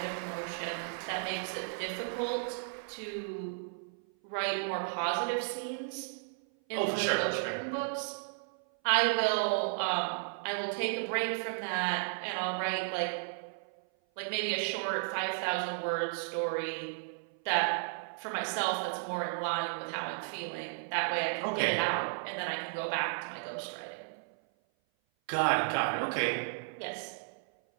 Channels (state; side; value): silent; left; 55 dB below the other